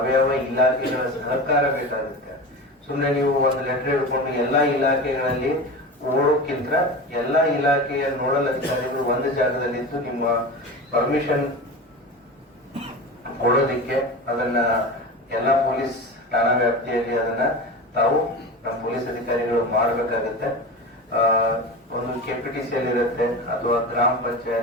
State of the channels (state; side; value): normal; both; correlation 0.28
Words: ಇಲಾಖೆಗಳ ಸಹಕಾರ ಬೇಕಾಗುತ್ತೆ. ಸುಮ್ನೆ ನೀವು ಒಂದು ಲೆಟರ್ ಹಿಡ್ಕೊಂಡು ಎಲ್ಲಾ ಇಲಾಖೆಗಳಲ್ಲಿ ಓಡೋಕ್ಕಿಂತ ಎಲ್ಲಾ ಇಲಾಖೆಯ ನೋಡಲ್ ಅಧಿಕಾರಿಗಳು ಒಂದು ಜಾಗದಲ್ಲಿದ್ದು ನಿಮ್ಮ ಪರ್ಮಿಷನ್ ಕೊಡೋದಿಕ್ಕೆ ಅದನ್ನ ಎಲ್ಲಾ ಪೊಲೀಸ್ ಠಾಣಾ ವ್ಯಾಪ್ತಿಯಲ್ಲಿ ಅದನ್ನ ತಾವು ನಮ್ಮ ಪೊಲೀಸ್ ಅಧಿಕಾರಿಗಳು ಮಾಡಬೇಕಾಗುತ್ತೆ. ಒಂದು ಕೆಪಿಟಿಸಿಯಲ್ಲಿ ಇರುತ್ತೆ, ಅಥವಾ ಗ್ರಾಮ